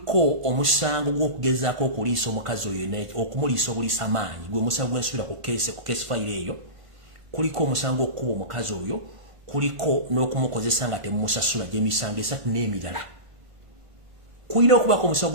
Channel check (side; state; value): left; late; 1.5 ms